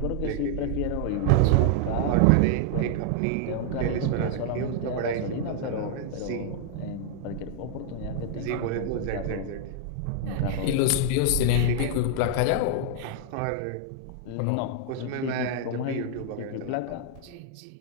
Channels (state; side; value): different; both; correlation 0.00